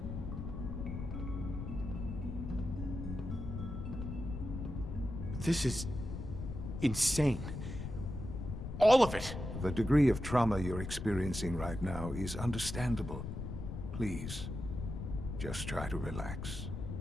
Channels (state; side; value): noise; left; rumble, 6 dB below the sound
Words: This is insane. All of it! The degree of trauma you're experiencing right now is understandable. Please, just try to relax.